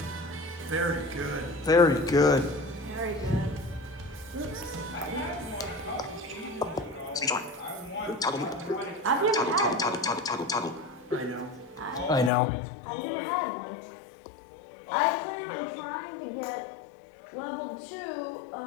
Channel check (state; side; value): drops out; right; at 12.3 s